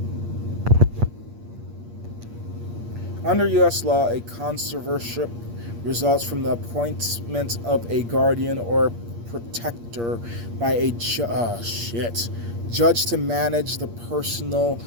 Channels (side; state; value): left; late; 8.6 ms